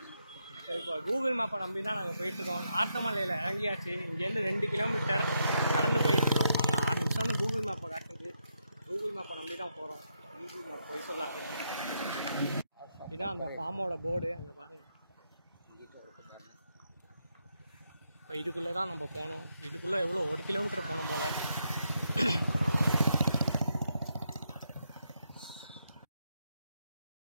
சரி, இப்போ கூகுள் மேப்பை நம்பி தான் நாங்கள் போயிட்டுருக்கோம். நார்த்தமலையில் இறங்கியாச்சு. இங்கேருந்து 2 கிலோமீட்டர் நடந்து போயிட்டுருக்கோம். நாங்கள் 6 நிமிஷம்னு கூகுள் மேப்பை காட்டுது. கூகுள் மேப்பை நம்பி தான் போகிறோம். கூகுள் மேப் போய் சொல்லாது. இதுதான் அந்த ஃபார்மோட போர்டு, அங்கே பாருங்கள். இப்போ இதுக்குள்ளே தான் நம்ம போகணும். இதுக்குள்ளே எவ்வளோ 1 கிலோமீட்டர் போகணும் போல்.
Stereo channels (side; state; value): both; inverted; correlation -0.81